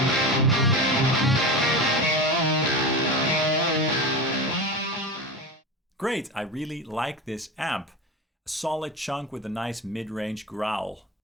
Great, I really like this amp. A solid chunk with a nice mid-range growl.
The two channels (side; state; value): both; normal; correlation 0.25